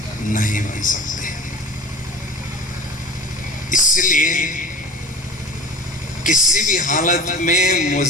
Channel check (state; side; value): normal; both; correlation 0.38